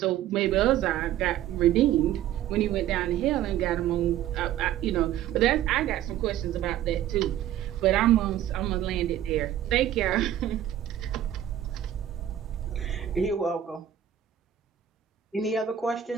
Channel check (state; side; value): quieter; left; 11.4 dB